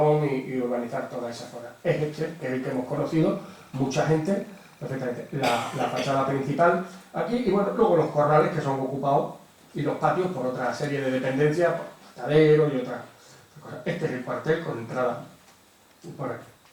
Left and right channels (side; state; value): both; identical; correlation 1.00